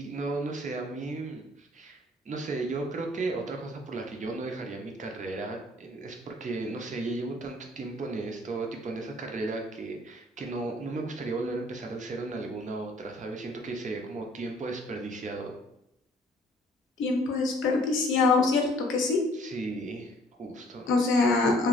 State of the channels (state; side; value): normal; both; correlation 0.58